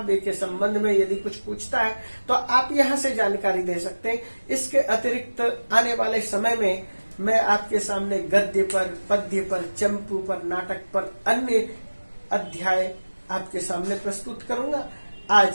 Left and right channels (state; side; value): inverted; both; correlation -1.00